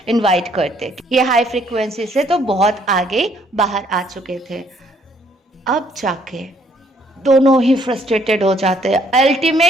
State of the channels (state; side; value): normal; both; correlation 0.66